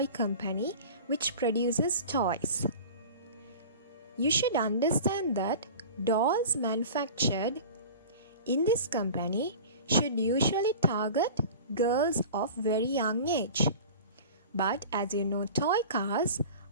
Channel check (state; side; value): inverted; both; correlation -0.37